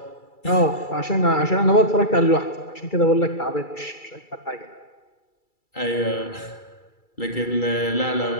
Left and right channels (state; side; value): late; right; 2.3 ms